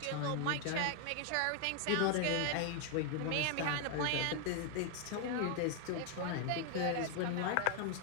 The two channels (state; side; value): different; both; correlation 0.00